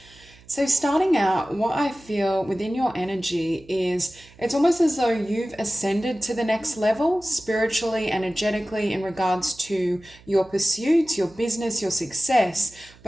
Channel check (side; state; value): right; noise; hum, 25 dB below the sound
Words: So, starting out, what I feel within your energy is it's almost as though you've ascended to the next level spiritually, energetically, in regards to your pursuits, your business, your success.